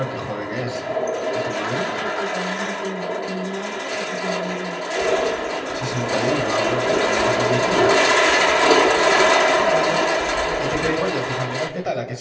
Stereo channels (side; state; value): both; identical; correlation 1.00